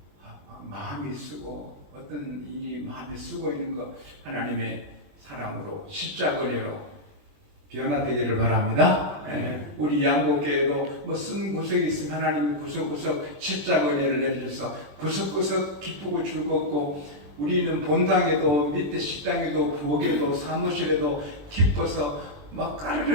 마음이 쓰고 어떤 일이 마음이 쓰고 있는 거 하나님의 사랑으로 십자가 은혜로 변화되기를 바랍니다. 우리 양곡교회도 뭐 쓴 구석이 있으면 하나님이 구석구석 십자가 은혜를 내려줘서 구석구석 기쁘고 즐겁고 우리는 본당에도 밑에 식당에도 부엌에도 사무실에도 기뻐서 막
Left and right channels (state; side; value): late; left; 21 ms